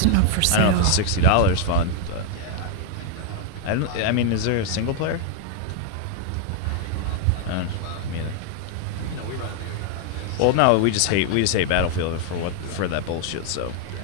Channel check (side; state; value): both; different; correlation 0.00